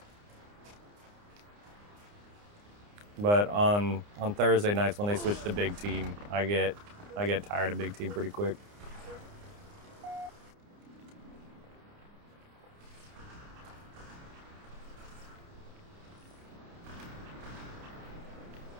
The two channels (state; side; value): late; left; 29 ms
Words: But on Thursday nights when they switch to big team, I get tired of big team pretty quick.